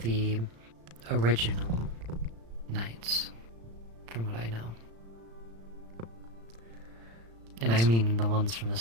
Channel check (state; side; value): late; left; 35 ms